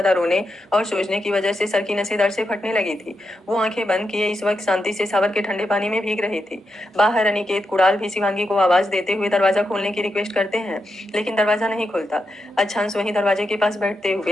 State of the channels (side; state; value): both; normal; correlation 0.86